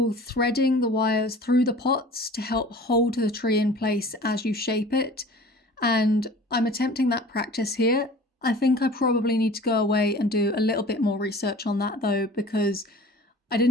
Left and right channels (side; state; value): both; normal; correlation 0.43